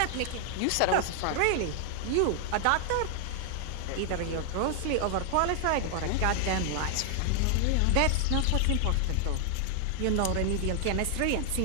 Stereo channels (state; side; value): different; both; correlation 0.00